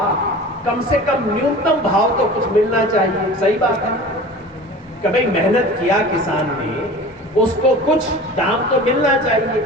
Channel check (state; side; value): normal; both; correlation 0.38